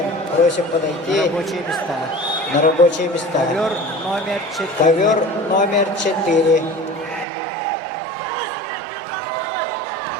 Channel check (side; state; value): left; drops out; at 7.2 s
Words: просим подойти на рабочие места. Ковер номер 4.